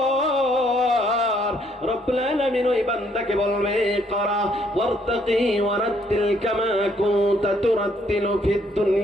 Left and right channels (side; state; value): both; normal; correlation 0.68